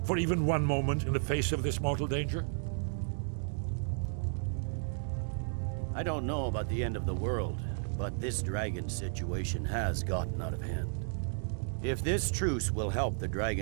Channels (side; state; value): left; silent; digital silence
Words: for even one moment in the face of this mortal danger? I don't know about the end of the world, but this dragon situation has gotten out of hand. If this truce will help the